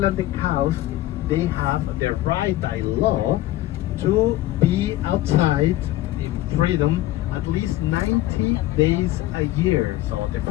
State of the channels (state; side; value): quieter; right; 15.6 dB